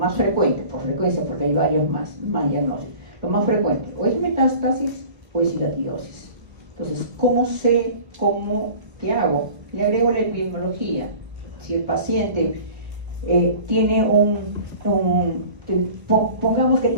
frecuente, por frecuencia, porque hay varios más diagnósticos, lo más frecuente, o es metástasis o es hidatidosis. Entonces, ¿qué hago? Le agrego la epidemiología. Si el paciente tiene pongamos que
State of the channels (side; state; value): left; late; 1.0 ms